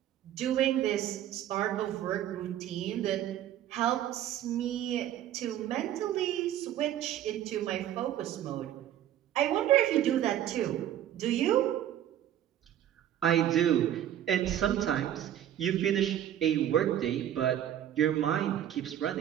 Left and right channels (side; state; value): left; quieter; 11.4 dB